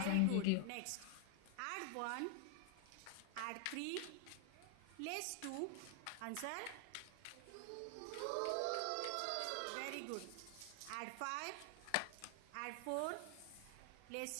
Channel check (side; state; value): both; different; correlation 0.00